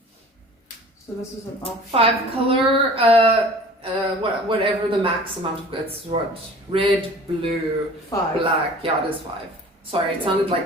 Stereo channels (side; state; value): both; normal; correlation 0.45